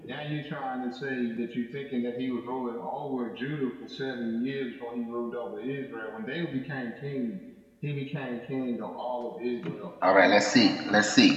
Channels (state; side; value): identical; both; correlation 1.00